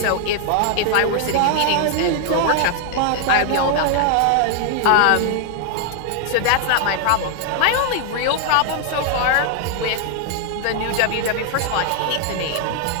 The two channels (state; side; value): different; both; correlation 0.00